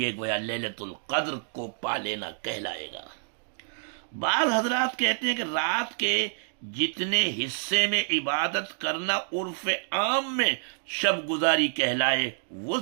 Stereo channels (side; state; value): left; silent; digital silence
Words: گویا لیلۃ القدر کو پا لینا کہلائے گا۔ بعض حضرات کہتے ہیں کہ رات کے جتنے حصے میں عبادت کرنا عرف عام میں شب گزاری کہلائے وہ